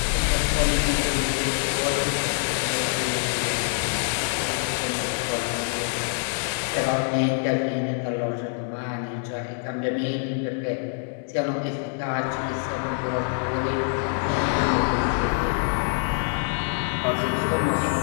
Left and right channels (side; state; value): right; silent; 62 dB below the other